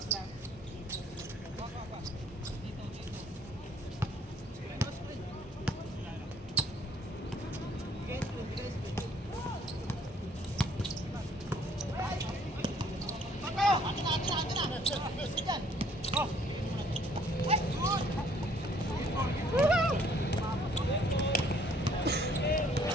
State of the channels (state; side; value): normal; both; correlation 0.61